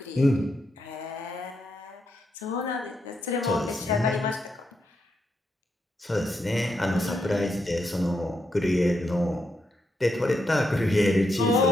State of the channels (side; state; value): both; normal; correlation 0.82